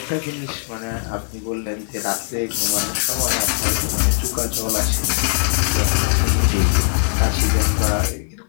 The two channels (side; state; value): right; silent; digital silence